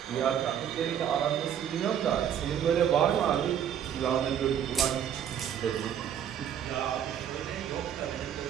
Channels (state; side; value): quieter; left; 9.2 dB